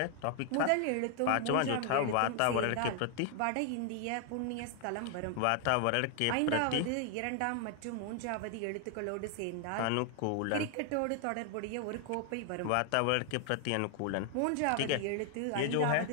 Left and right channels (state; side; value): different; both; correlation 0.00